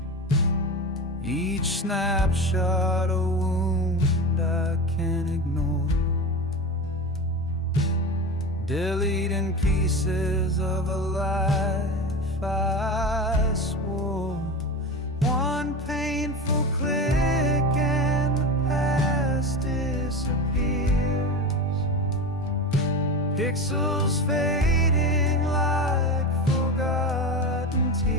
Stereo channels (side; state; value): both; normal; correlation 0.26